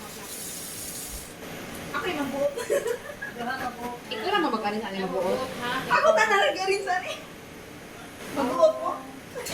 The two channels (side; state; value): both; identical; correlation 1.00